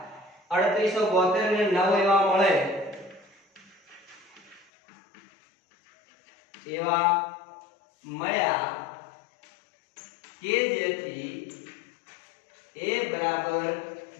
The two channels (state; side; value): drops out; right; at 4.7 s